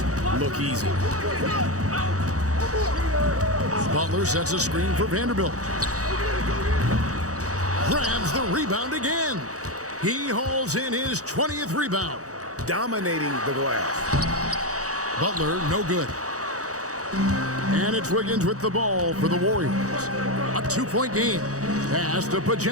look easy. Butler sets a screen for Vanderbilt. Grabs the rebound again. He hauls in his 20th rebound. Dominating the glass. Butler, no good. And it's Wiggins with the ball for the Warriors. A 2-point game. Pass to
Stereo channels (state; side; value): late; left; 0.66 ms